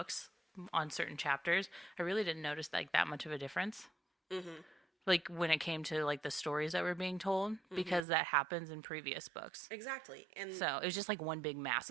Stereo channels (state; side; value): drops out; left; at 8.1 s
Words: on certain chapters, I really didn't notice like that much of a difference. Mm-hmm. Like when it came to like the stories that were being told, because that happens in previous books. Exactly. And So it was just like one big